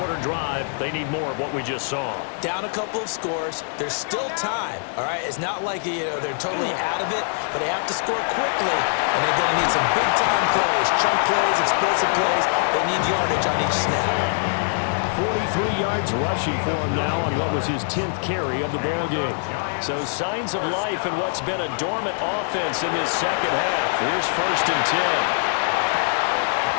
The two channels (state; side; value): silent; right; digital silence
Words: drive. They need more of what we just saw. Down a couple of scores. There's still time, all right? It's not like, they're totally out of it, but they have to score quickly, and they're going to need some big-time plays, chunk plays, explosive plays. They need yardage on each snap. 43 yards rushing for him now on what was his 10th carry of the ballgame. So signs of life in what's been a dormant offense in this second half. Here's 1st and 10.